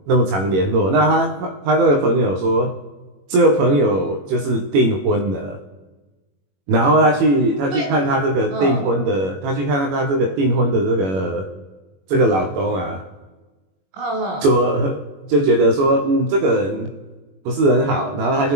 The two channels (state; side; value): late; left; 21 ms